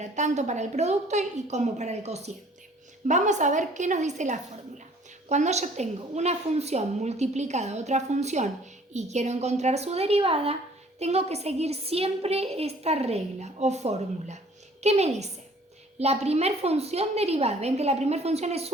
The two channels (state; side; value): normal; both; correlation 0.55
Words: tanto para el producto y como para el cociente. Vamos a ver qué nos dice la fórmula. Cuando yo tengo una función multiplicada a otra función y quiero encontrar su derivada, tengo que seguir siempre esta regla o fórmula. ¿Qué me dice? La primera función derivada, ven que la primera función es